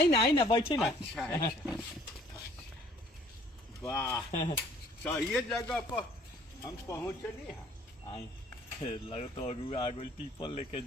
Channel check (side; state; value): both; normal; correlation 0.57